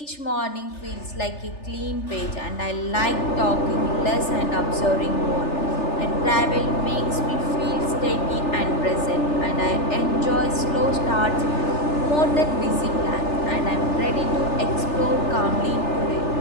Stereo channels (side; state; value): right; late; 3.4 ms